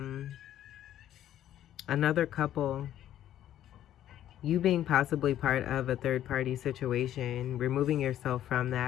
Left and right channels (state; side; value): quieter; right; 11.8 dB